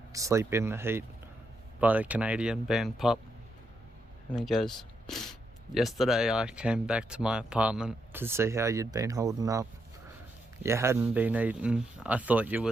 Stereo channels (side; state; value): both; normal; correlation 0.81